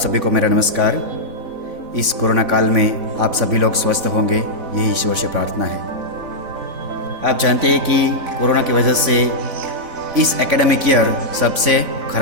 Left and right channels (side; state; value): left; late; 4.0 ms